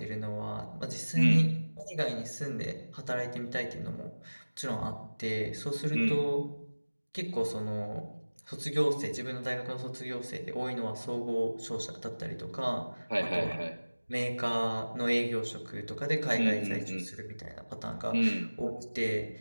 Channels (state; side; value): inverted; both; correlation -1.00